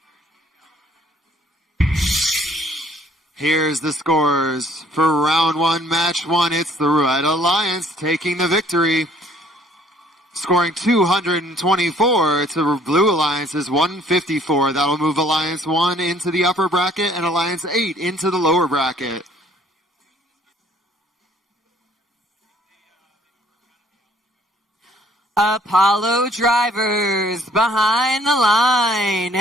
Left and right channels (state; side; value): normal; both; correlation 0.60